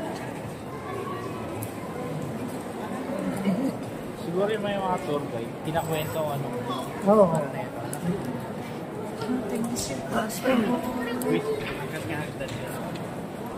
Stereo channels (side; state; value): both; identical; correlation 1.00